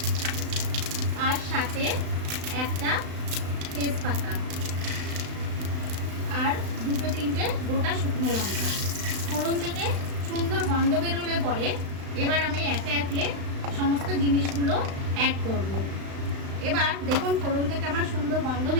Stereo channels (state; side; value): late; left; 35 ms